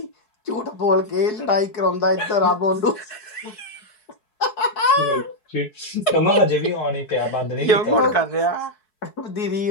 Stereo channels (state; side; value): late; right; 4.7 ms